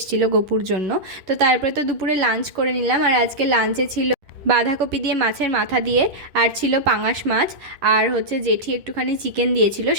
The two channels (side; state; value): left; late; 10 ms